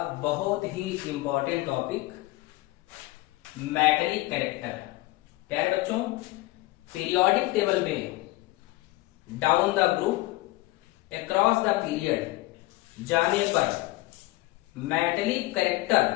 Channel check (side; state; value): right; quieter; 19.5 dB